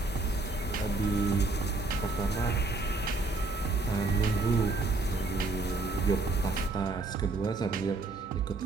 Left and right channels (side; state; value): left; quieter; 3.3 dB